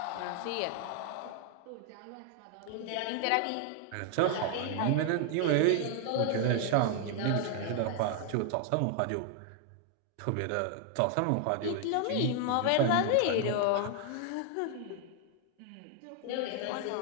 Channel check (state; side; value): different; both; correlation 0.00